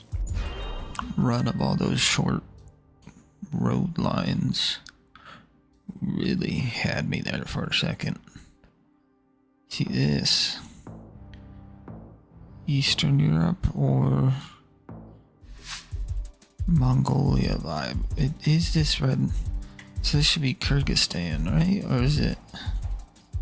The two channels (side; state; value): both; identical; correlation 1.00